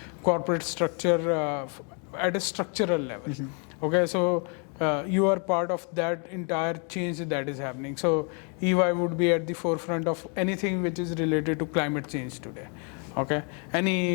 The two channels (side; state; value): right; quieter; 38.2 dB